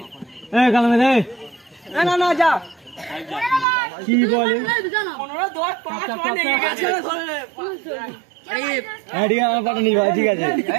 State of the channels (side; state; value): left; drops out; at 3.7 s